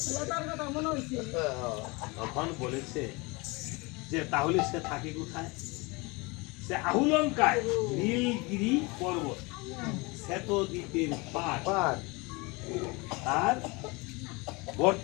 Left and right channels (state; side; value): quieter; right; 26.3 dB